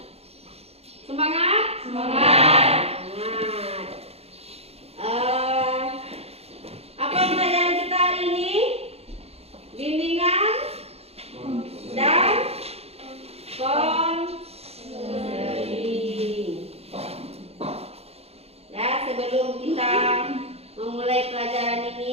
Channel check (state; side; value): late; left; 0.29 ms